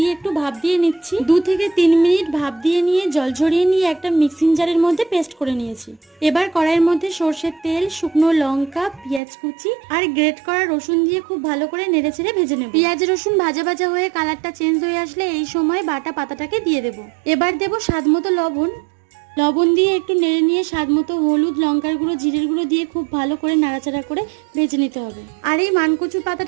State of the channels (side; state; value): left; drops out; at 9.2 s